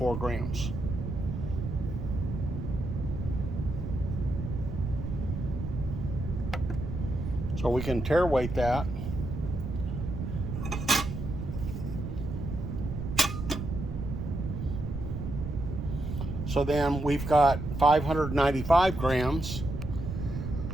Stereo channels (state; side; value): noise; right; rumble, 5 dB below the sound